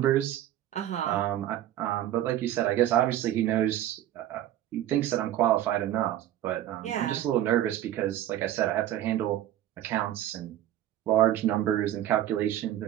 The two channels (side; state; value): left; quieter; 12.6 dB